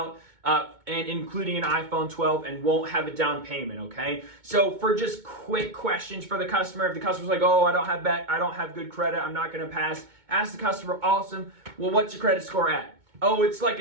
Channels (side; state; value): left; late; 2.2 ms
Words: and including an iPhone 12 and won't have a down payment, okay? So for just quick questions for the customer, if the customer's like, oh, I don't have good credit, I'm not gonna pass, ask the customer, awesome, well, what's your credit score at? Oh, it's like